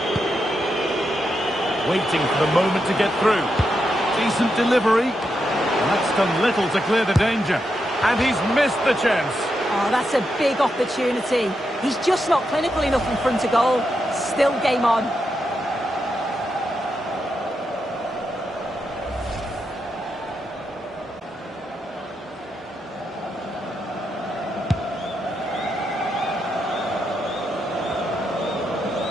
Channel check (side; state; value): both; normal; correlation 0.84